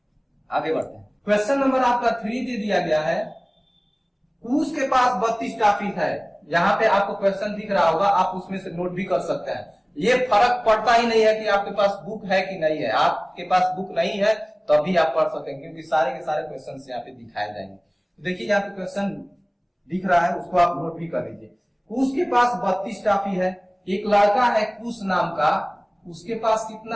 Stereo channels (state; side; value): identical; both; correlation 1.00